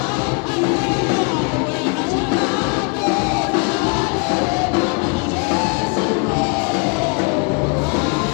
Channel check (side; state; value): right; quieter; 35.4 dB